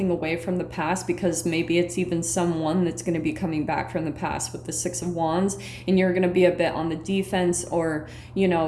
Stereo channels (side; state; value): both; identical; correlation 1.00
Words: away from the past, because maybe it's even someone that's going to be coming back from the past with the Six of Wands, and you're going to be a bit on the defense, or, you